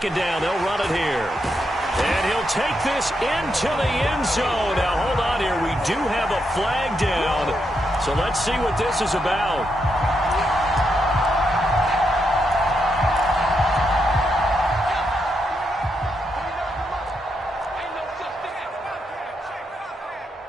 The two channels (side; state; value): both; normal; correlation 0.82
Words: down, they'll run it here. And he'll take this into the end zone. Now, hold on here. We do have a flag down. So let's see what this is about.